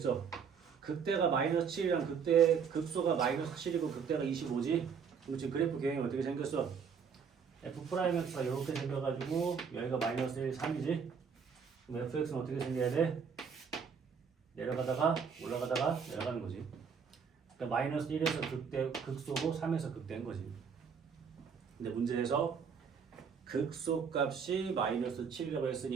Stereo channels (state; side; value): quieter; left; 6.5 dB